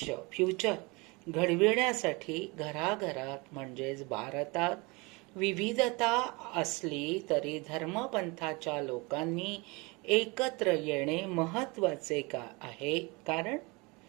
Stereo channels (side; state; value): left; quieter; 26.8 dB